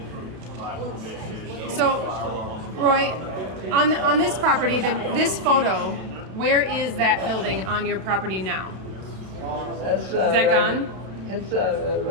for private fishing. No So, firearms. Roy, on this property, this photo, where is that building on your property now? That's, Is that gone? It's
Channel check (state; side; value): late; left; 32 ms